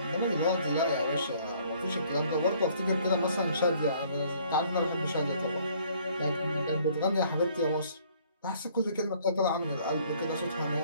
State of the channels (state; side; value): inverted; both; correlation -0.59